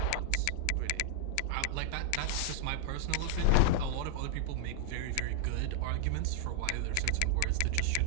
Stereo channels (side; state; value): both; different; correlation -0.01